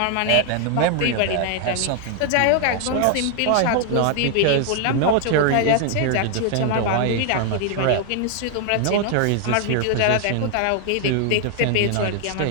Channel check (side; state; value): both; different; correlation 0.00